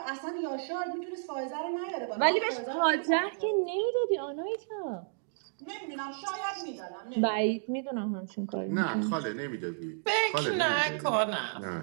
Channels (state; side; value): silent; left; digital silence